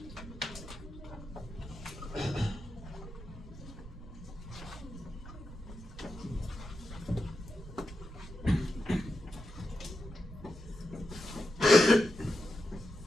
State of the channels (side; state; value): right; noise; rumble, 14 dB below the sound